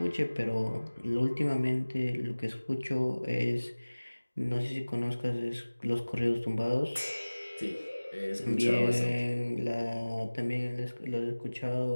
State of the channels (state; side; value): inverted; both; correlation -1.00